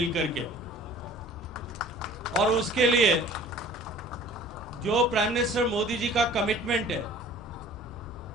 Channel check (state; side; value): normal; both; correlation 0.48